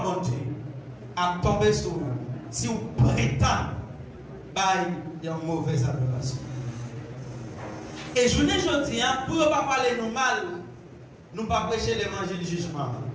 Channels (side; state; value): both; identical; correlation 1.00